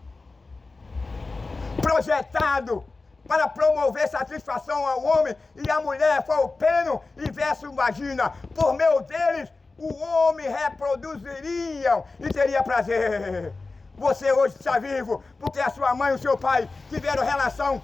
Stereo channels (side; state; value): right; quieter; 3.7 dB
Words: projetado para promover satisfação ao homem e à mulher foi o pênis e verso vagina. Por meio deles, o homem reproduziria e teria prazer. Você hoje está vivo porque a sua mãe e o seu pai tiveram relação